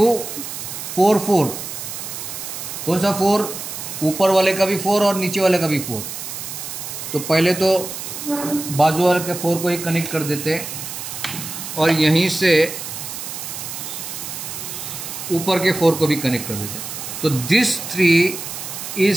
4. कौन सा 4? ऊपर वाले का भी 4 और नीचे वाले का भी 4. तो पहले तो बाजू वाले के 4 को ही कनेक्ट कर देते और यहीं से ऊपर के 4 को भी कनेक्ट कर देते. So this 3 is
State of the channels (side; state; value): right; noise; hiss, 8 dB below the sound